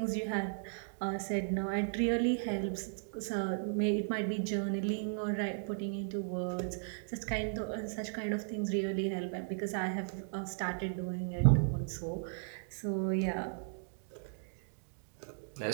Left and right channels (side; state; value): left; silent; digital silence